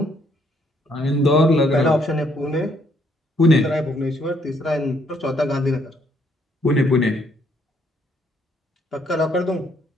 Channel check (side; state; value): both; normal; correlation 0.69